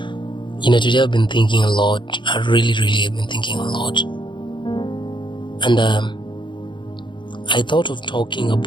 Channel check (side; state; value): right; late; 0.23 ms